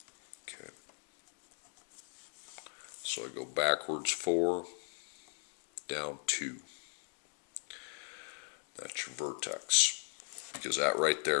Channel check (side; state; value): right; silent; 52 dB below the other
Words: okay? So I go backwards 4, down 2. That's your vertex, because that right